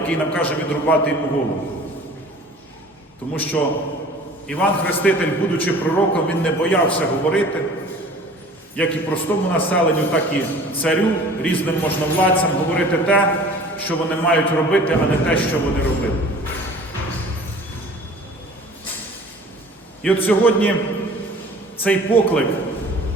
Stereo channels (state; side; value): normal; both; correlation 0.46